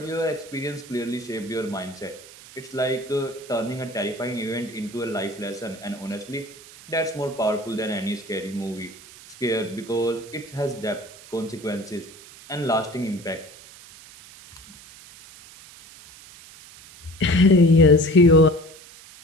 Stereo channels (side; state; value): right; noise; hiss, 20 dB below the sound